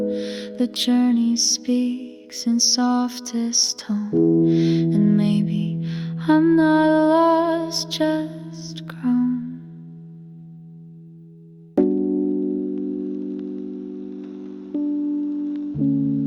The journey speaks in softest tone, and maybe I'm not lost, just grown.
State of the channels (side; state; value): both; identical; correlation 1.00